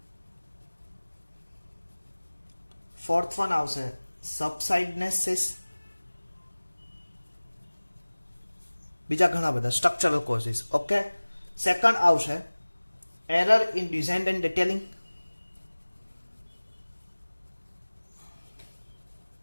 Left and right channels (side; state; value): both; inverted; correlation -1.00